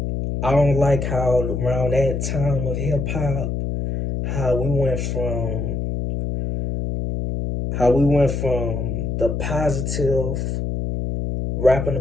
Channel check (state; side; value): noise; left; hum, 2 dB below the sound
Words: I don't like how around that time of hip hop, how we went from the positive, rapping